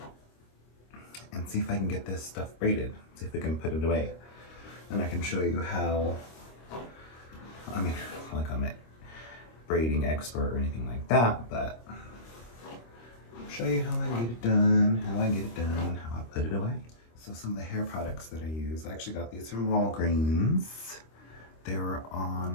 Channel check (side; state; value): right; late; 26 ms